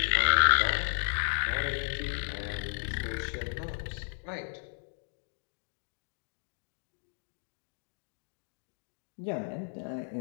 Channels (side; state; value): right; silent; digital silence